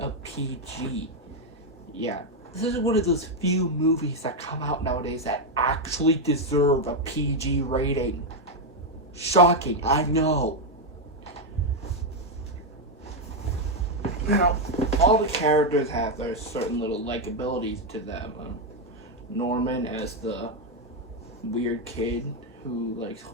PG. Yeah, this is one of those few movies that come out nowadays that actually deserve a PG rating. Shocking, I know. Now, all the characters have their certain little likabilities to them. Norman as the weird kid who likes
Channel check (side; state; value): both; normal; correlation 0.03